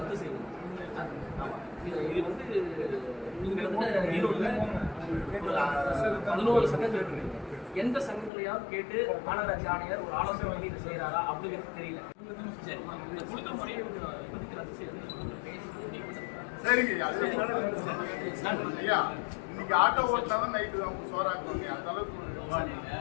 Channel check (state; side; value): drops out; right; at 8.3 s